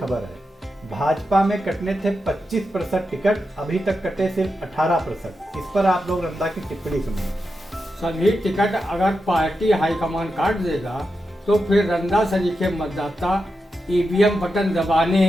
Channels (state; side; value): normal; both; correlation 0.88